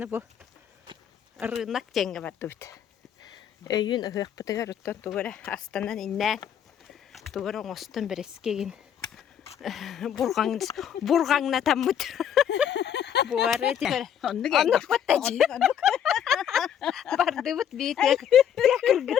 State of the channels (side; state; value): right; quieter; 9.1 dB